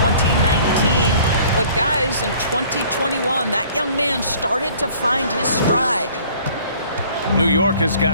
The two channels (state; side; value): inverted; both; correlation -0.54